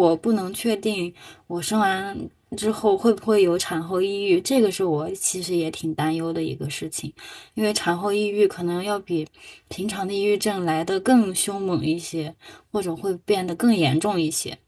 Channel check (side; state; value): both; identical; correlation 1.00